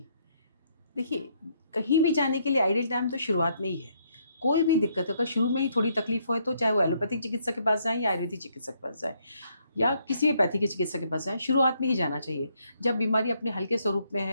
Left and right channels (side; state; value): both; inverted; correlation -0.71